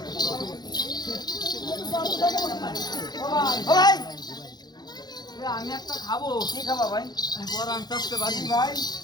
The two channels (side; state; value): right; late; 0.20 ms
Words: আমি একটা খাবো। কি খাবা ভাই? বড় আনতে আসতে পারি ভাই।